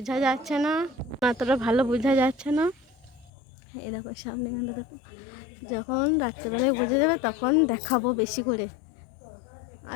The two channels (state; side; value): drops out; right; at 3.3 s